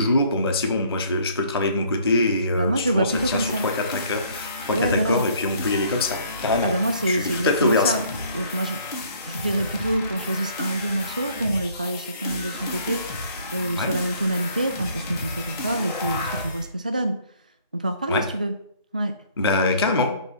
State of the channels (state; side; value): inverted; both; correlation -0.59